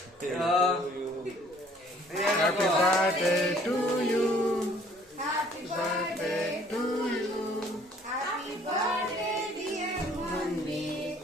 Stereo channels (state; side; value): normal; both; correlation 0.58